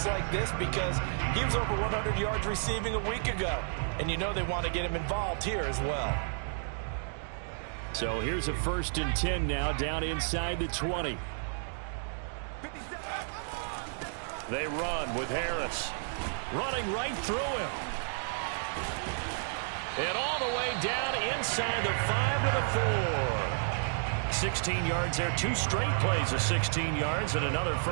like this because he was over 100 yards receiving a week ago. And you know they want to get him involved here as well. So here's a 1st and 10 now down inside the 20. They run with Harris. Running right through him. And all the way down inside the 5 to the 4. 16 yards there. 2 straight plays of 16 yards and another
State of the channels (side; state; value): left; silent; digital silence